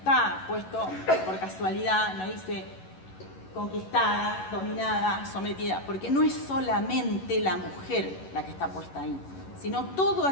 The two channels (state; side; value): late; right; 11 ms